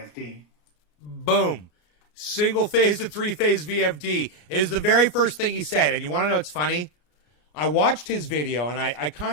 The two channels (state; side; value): late; right; 33 ms